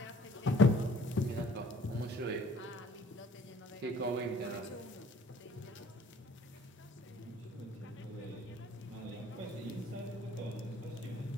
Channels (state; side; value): normal; both; correlation 0.55